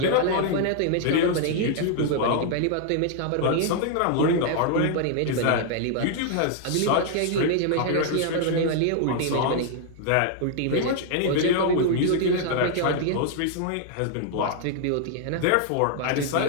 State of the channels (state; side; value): different; both; correlation 0.00